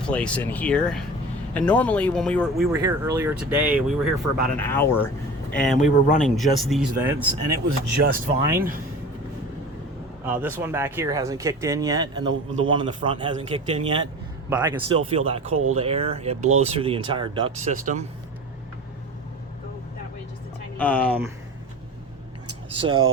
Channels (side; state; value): both; normal; correlation 0.36